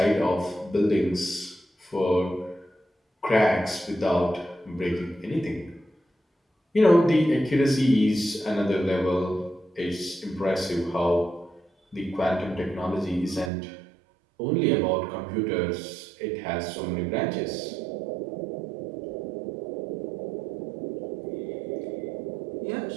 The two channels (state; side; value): drops out; left; at 13.5 s